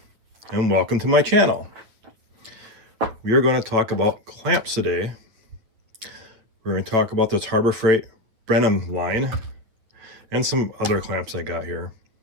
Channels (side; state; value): left; late; 9.3 ms